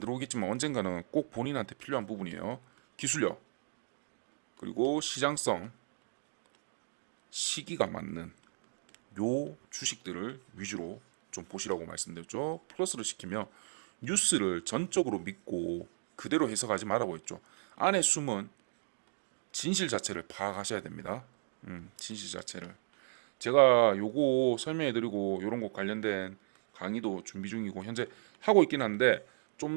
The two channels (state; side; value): silent; left; digital silence